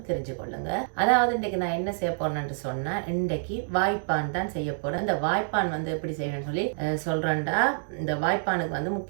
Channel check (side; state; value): left; silent; digital silence